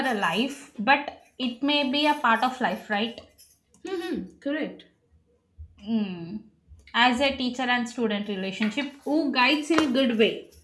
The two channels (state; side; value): identical; both; correlation 1.00